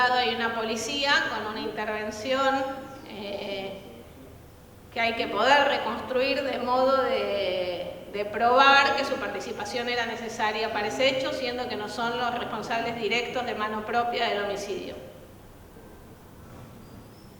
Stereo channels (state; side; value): identical; both; correlation 1.00